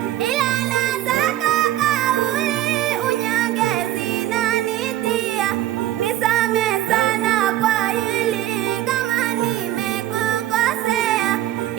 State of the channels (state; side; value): quieter; left; 13.7 dB